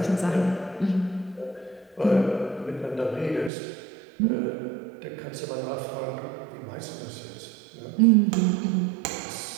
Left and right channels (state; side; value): drops out; left; at 3.5 s